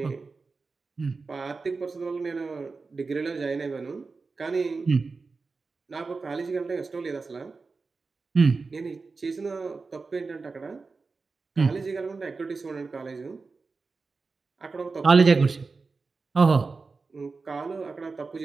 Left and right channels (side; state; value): left; quieter; 4.2 dB